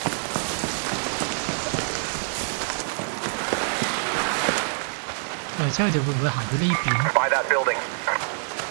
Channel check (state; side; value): silent; left; 61 dB below the other